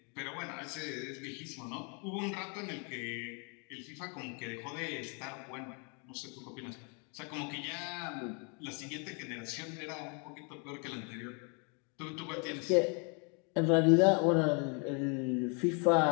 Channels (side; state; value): right; quieter; 35.9 dB